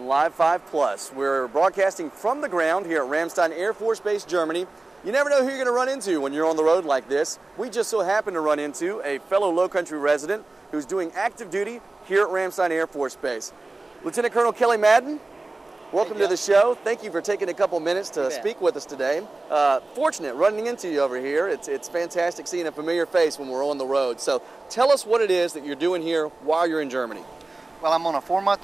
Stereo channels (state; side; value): quieter; left; 3.1 dB